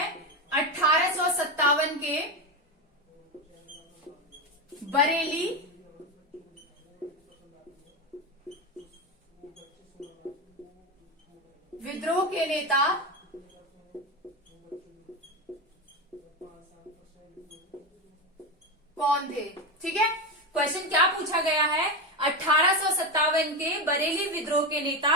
1857 के बरेली विद्रोह के नेता कौन थे। ठीक है, क्वेश्चन क्या पूछा गया है, 1857 के बरेली विद्रोह के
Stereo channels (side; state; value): both; normal; correlation 0.14